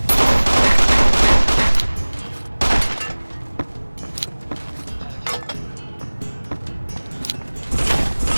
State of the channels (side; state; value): both; inverted; correlation -1.00